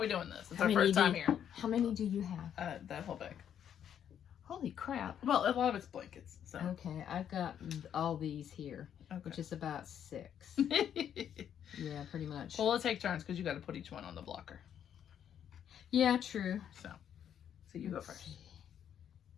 we doing this? It's our first time here. How many do you have? That whole bag. Holy crap. Well, a lot of it's blankets. So. Okay, I've got all these here, which is about 6. Yeah, pretty much. Well, we'll take turns because you got to put each one on the blocker. Yeah, true. So you go first.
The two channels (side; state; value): right; quieter; 9.3 dB